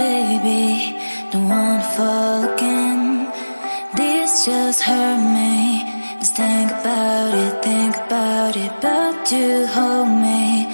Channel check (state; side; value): inverted; both; correlation -1.00